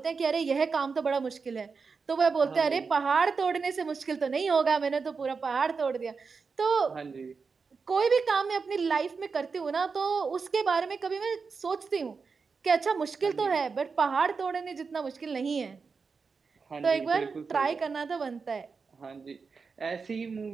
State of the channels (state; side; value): quieter; left; 5.0 dB